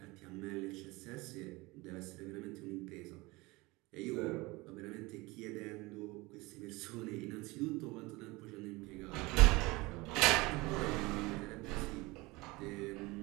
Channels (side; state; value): left; quieter; 23.0 dB